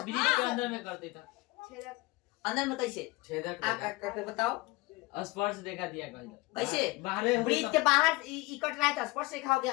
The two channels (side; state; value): right; quieter; 21.8 dB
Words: ब्रीथ के अंदर में करते था, अंदर में कैसे छेदक करके बताओ, स्पर्श रेखा दिया कैसे बाहर ब्रीथ के बाहर कट रहा है तो स्पर्श रेखा हो